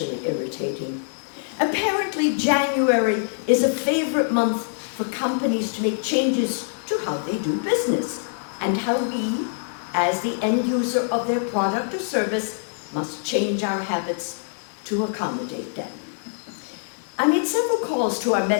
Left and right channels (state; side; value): silent; right; digital silence